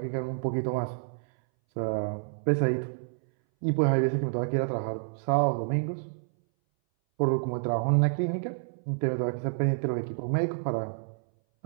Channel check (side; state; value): left; silent; 59 dB below the other